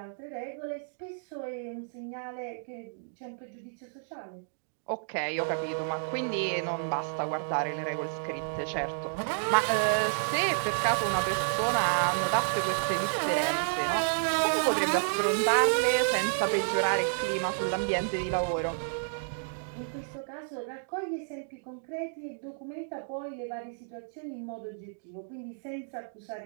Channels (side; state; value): left; silent; digital silence